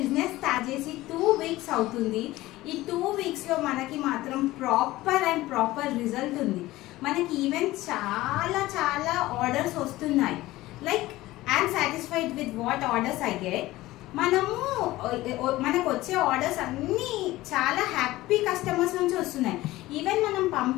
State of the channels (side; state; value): right; quieter; 17.5 dB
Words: స్టార్ట్ చేసి 2 వీక్స్ అవుతుంది. ఈ 2 వీక్స్లో మనకి మాత్రం ప్రాపర్ రిజల్ట్ ఉంది. మనకి ఈవెన్ చాలా ఆర్డర్స్ వస్తున్నాయి. Like I'm satisfied with what orders I get. మనకు వచ్చే ఆర్డర్స్ అన్నీ చాలా హ్యాపీ కస్టమర్స్ నుంచి వస్తున్నాయి. ఈవెన్ మనం